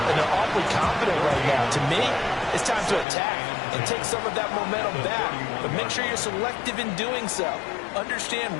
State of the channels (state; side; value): drops out; right; at 3.1 s